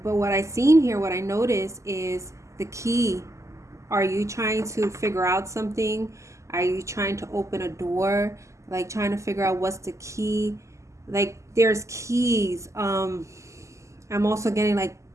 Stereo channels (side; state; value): left; late; 0.14 ms